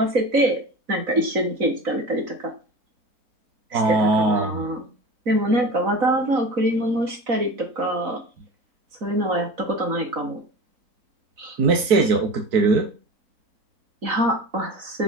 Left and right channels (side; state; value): left; late; 4.0 ms